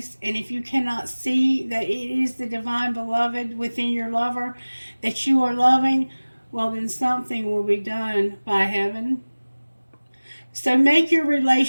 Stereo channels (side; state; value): both; inverted; correlation -1.00